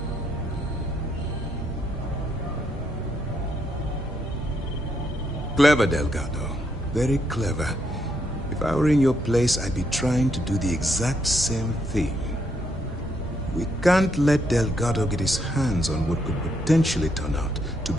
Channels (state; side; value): normal; both; correlation 0.76